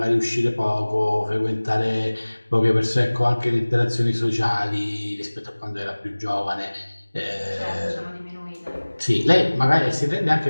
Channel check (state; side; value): inverted; both; correlation -1.00